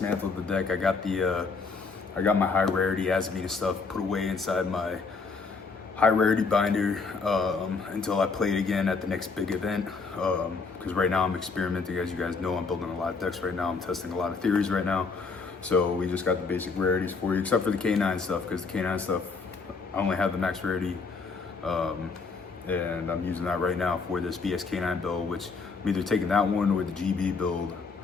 the deck. I got my high rarity Azamina stuff put away inside my high rarity binder until I play it again at the next big event. Because right now I'm experimenting, as you guys know. I'm building a lot of decks right now. I'm testing a lot of theories right now. So we just got the basic rarities for you, except for the K9 stuff, because the K9 stuff, I only have the max rarity, and I'm using that right now for this K9 build, which I'm either taking that one or the GB build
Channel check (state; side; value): quieter; right; 4.6 dB